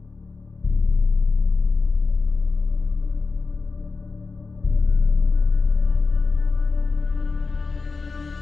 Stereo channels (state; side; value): quieter; right; 4.2 dB